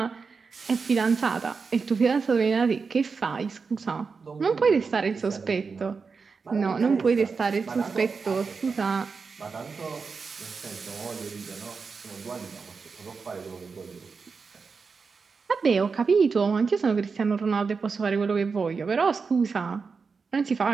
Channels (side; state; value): left; quieter; 5.0 dB